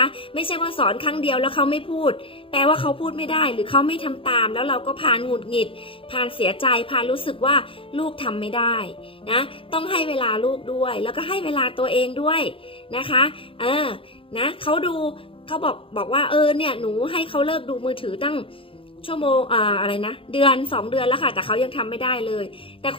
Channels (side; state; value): right; late; 0.26 ms